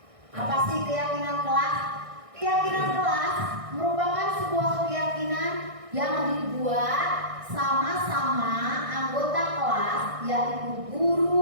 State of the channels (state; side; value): late; left; 1.6 ms